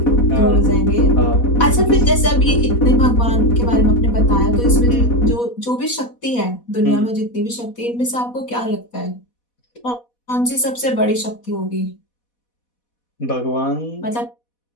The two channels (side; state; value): right; late; 4.1 ms